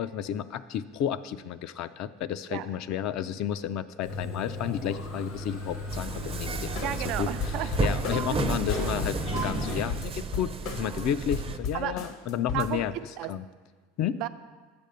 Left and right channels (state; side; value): quieter; right; 3.1 dB